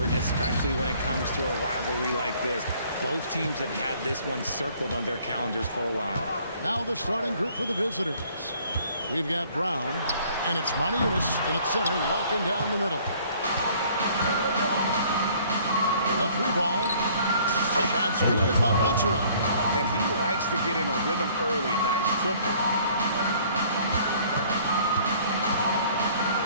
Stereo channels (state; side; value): inverted; both; correlation -0.57